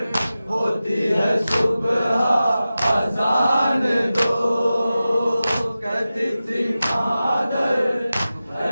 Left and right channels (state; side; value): inverted; both; correlation -0.94